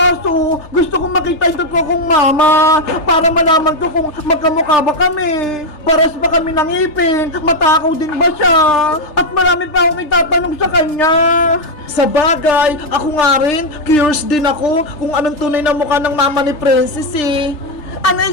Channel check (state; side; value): late; right; 3.3 ms